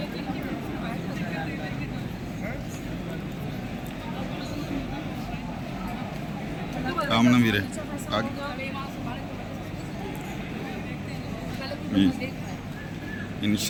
आमना भी रहे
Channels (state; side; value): identical; both; correlation 1.00